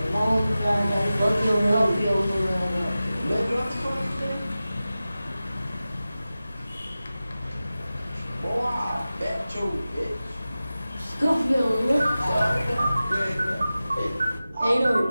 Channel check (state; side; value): inverted; both; correlation -0.95